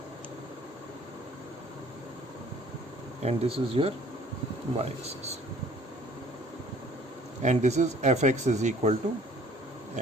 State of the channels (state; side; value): normal; both; correlation 0.54